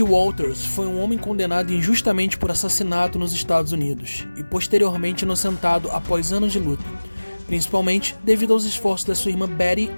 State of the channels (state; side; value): inverted; both; correlation -1.00